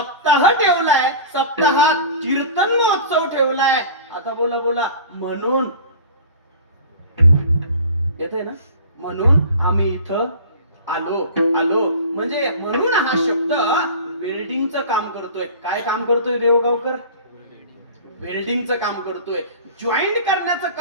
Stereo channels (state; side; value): inverted; both; correlation -0.38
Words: ठेवलाय, सप्ताहात कीर्तन महोत्सव ठेवलाय. आता बोला म्हणून येते ना, म्हणून आम्ही इथं आलो म्हणजे म्हणून हा शब्द वेल्डिंगचं काम करतोय. काय काम करतोय देवगावकर? वेल्डिंगचं काम करतोय, जॉईंट करण्याचं